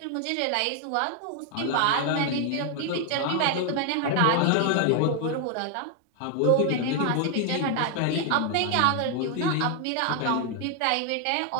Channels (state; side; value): different; both; correlation 0.00